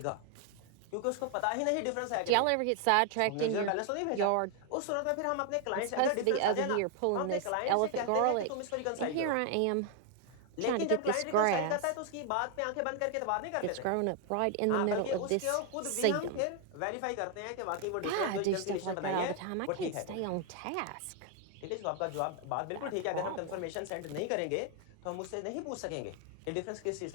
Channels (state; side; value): different; both; correlation 0.00